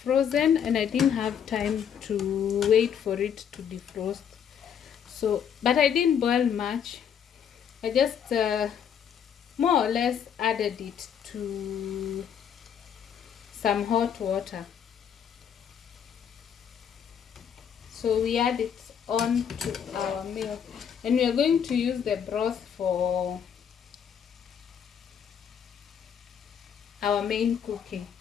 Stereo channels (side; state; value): right; quieter; 8.2 dB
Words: and I didn't have time to wait for it to defrost. So, but I didn't boil much. I just more or less added it to some hot water. So we add it on to our meal, and we are going to use the broth for our main cooking.